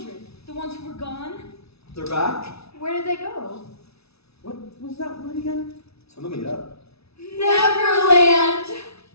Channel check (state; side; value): late; right; 0.79 ms